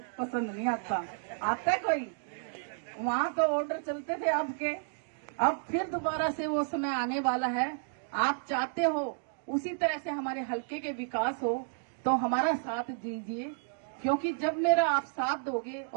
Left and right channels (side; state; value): left; silent; digital silence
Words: पसंद नहीं आता है कोई? वहां तो ऑर्डर चलते थे आपके, अब फिर दोबारा से वो समय आने वाला है। आप चाहते हो उसी तरह से हमारे हल्के के विकास हो, तो हमारा साथ दीजिए, क्योंकि जब मेरा आप साथ दोगे